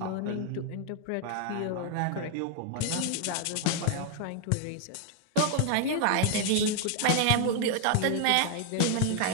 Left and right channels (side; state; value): both; different; correlation 0.00